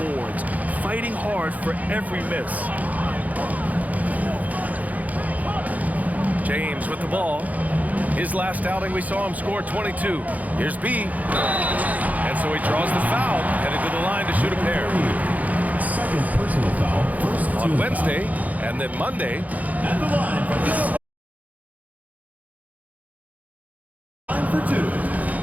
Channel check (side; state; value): left; late; 0.077 ms